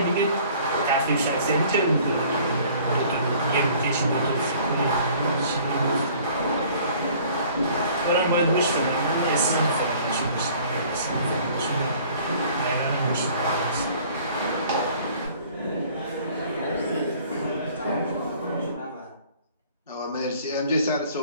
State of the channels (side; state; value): both; inverted; correlation -0.53